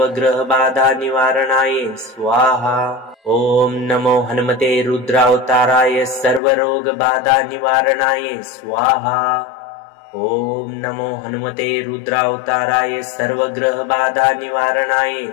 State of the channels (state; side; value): drops out; right; at 6.4 s